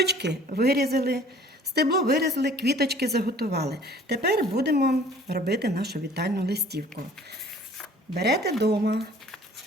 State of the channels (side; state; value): both; normal; correlation 0.51